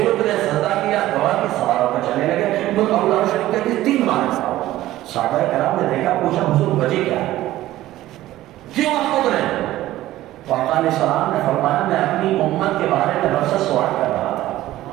اترے, سجدہ کیا, دعا کی, سوار ہو کے چلنے لگے. ابو داؤد شریف کہتے ہیں 3 بار ایسا ہوا. صحابہ کرام نے دیکھا, پوچھا حضور وجہ کیا ہے, کیوں آپ اترے؟ آقا علیہ السلام نے فرمایا میں اپنی امت کے بارے میں رب سے سوال کر رہا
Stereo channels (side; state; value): left; quieter; 15.2 dB